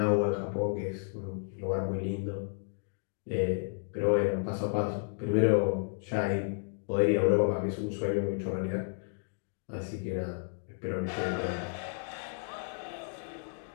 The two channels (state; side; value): silent; right; digital silence